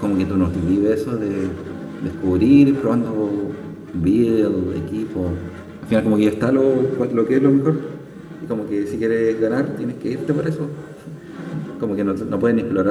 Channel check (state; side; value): identical; both; correlation 1.00